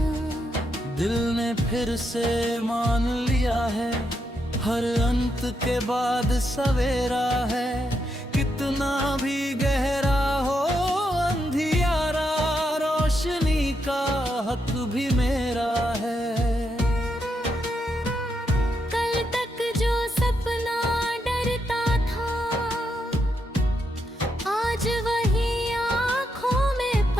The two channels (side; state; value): both; normal; correlation 0.81